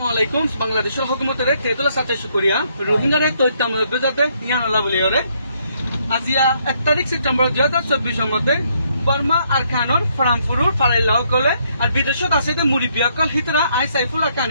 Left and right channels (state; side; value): inverted; both; correlation -0.71